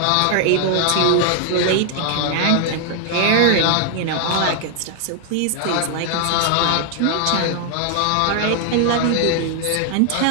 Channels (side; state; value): both; different; correlation 0.00